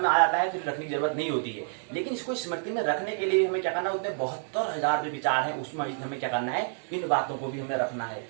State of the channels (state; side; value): silent; left; 59 dB below the other